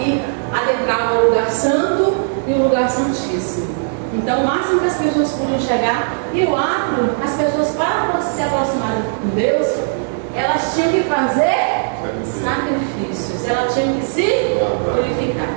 adentravam o lugar santo e o lugar santíssimo. Então, o máximo que as pessoas podiam chegar, e o átrio, as pessoas, para se aproximarem de Deus, elas tinham que fazer sacrifícios, elas tinham que se purificar.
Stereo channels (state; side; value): silent; left; 67 dB below the other